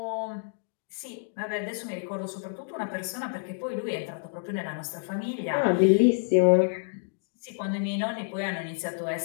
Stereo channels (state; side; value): silent; right; digital silence